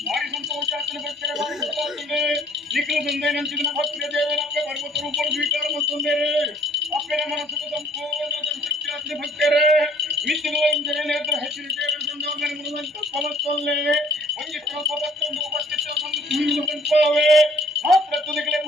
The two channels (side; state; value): both; normal; correlation 0.57